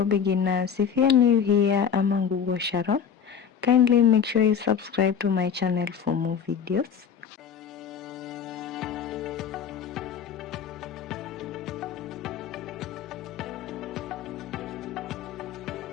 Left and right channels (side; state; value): right; quieter; 7.5 dB